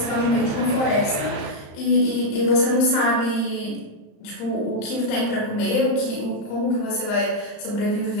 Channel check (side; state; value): right; late; 35 ms